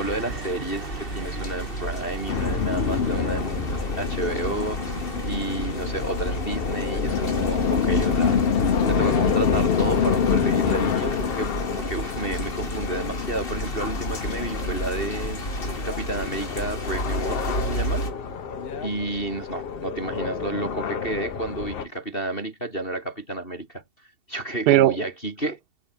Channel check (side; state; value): right; late; 2.8 ms